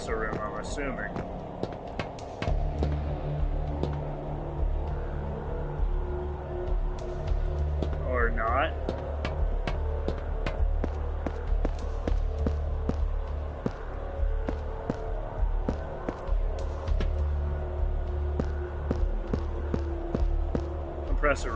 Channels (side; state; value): both; identical; correlation 1.00